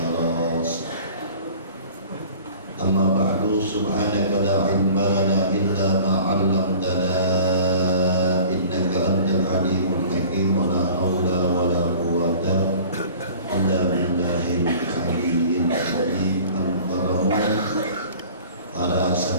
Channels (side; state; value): both; inverted; correlation -0.45